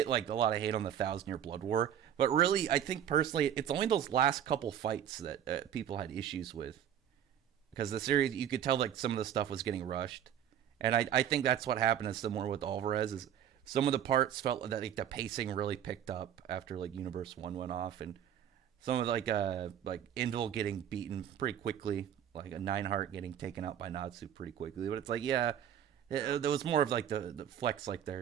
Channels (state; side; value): quieter; left; 10.0 dB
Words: like a lot of hate on the Thousand Year Blood War, but really, I think personally, it's only those last couple fights that people had issues with because the series you could tell like some of the stuff was getting rushed, and I think that's what happened is similar with Alvarez is some of the parts felt that like the pacing really picked up after like Universe One went off, and some of like Indel getting beaten pretty quickly, like a Nineheart getting taken out by Natsu pretty quickly. But it's like yeah, there was more of like the flex like